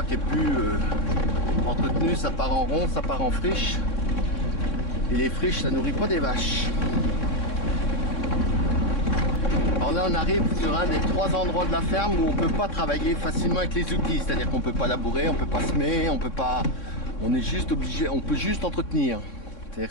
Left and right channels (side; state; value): right; late; 3.6 ms